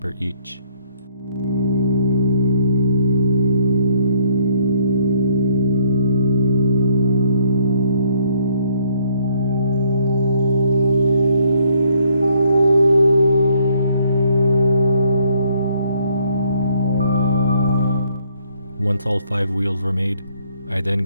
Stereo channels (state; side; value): inverted; both; correlation -0.66